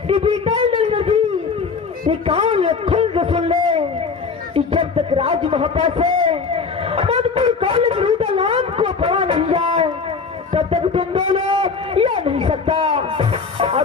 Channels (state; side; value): quieter; right; 5.0 dB